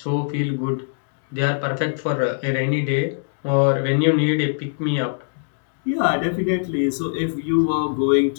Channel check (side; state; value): right; silent; digital silence